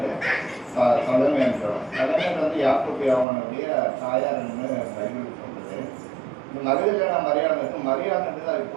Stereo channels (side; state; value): left; drops out; at 3.2 s